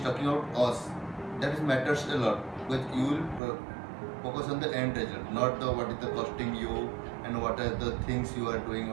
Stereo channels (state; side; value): drops out; left; at 3.4 s